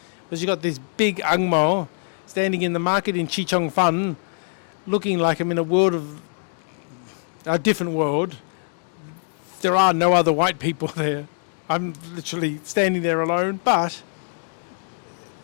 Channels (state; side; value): silent; right; digital silence